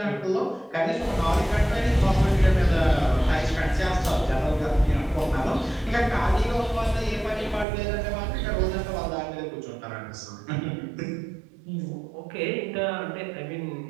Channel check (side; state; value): left; drops out; at 7.7 s